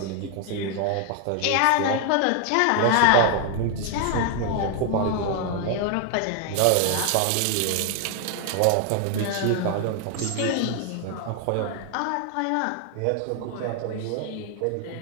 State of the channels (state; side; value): different; both; correlation 0.00